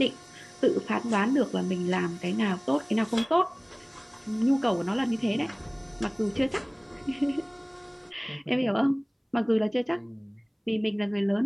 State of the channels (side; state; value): both; identical; correlation 1.00